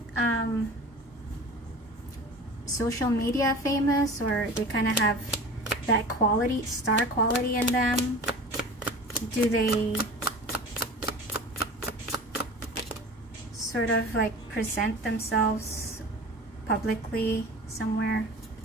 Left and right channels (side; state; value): both; normal; correlation 0.37